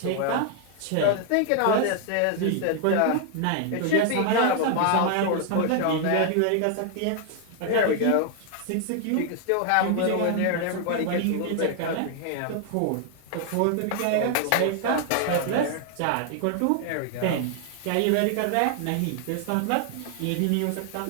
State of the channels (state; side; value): different; both; correlation 0.00